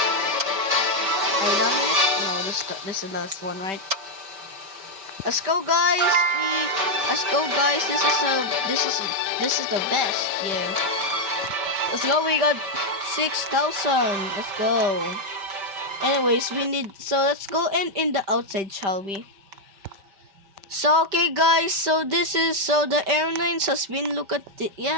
Are you done with it? No, this is the last one, right? Let's go, guys. Let's go, guys. This is the best. Yeah. Let's go. We got 6,000. Let's go. Anyways, let's go in the outside, shall we? So okay, guys. So the airlines has been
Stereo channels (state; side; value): late; left; 5.2 ms